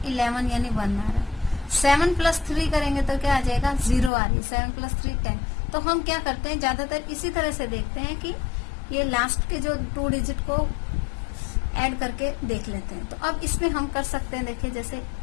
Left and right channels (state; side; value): drops out; right; at 4.1 s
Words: 11 यानी 1 आ रहा है। 7 प्लस 3 करेंगे तो क्या आ जाएगा, 0 आ रही है। 7 प्लस 3 10। तो हम क्या करते हैं, ज्यादातर इसी तरह से देखते हैं कि ये लास्ट के जो 2 डिजिट को ऐड करके देख लेते हैं। तो अब इसमें हम कर सकते हैं, देखिए जैसे